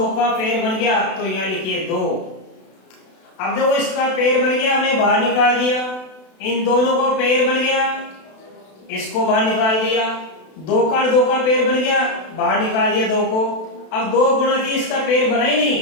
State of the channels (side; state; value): right; late; 32 ms